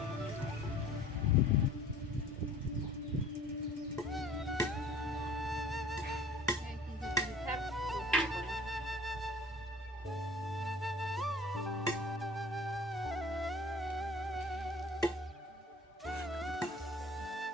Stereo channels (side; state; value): both; normal; correlation 0.47